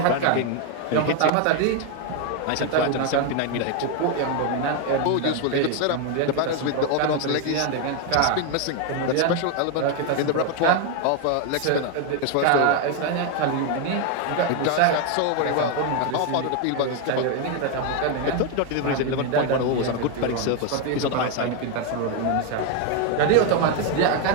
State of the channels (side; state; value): both; different; correlation 0.01